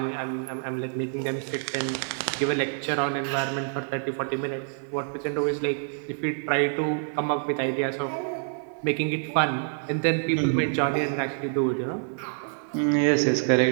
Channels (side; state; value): left; silent; digital silence